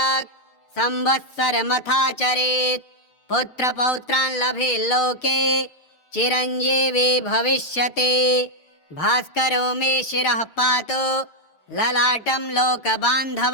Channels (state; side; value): late; right; 6.5 ms